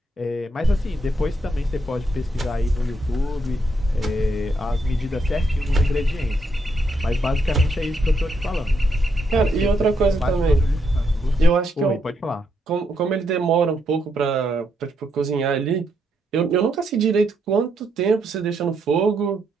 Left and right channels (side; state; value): both; normal; correlation 0.78